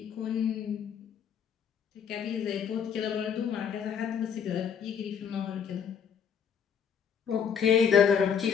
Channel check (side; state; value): right; quieter; 7.6 dB